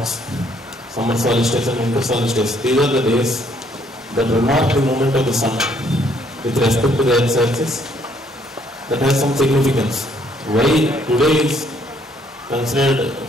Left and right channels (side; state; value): both; normal; correlation 0.67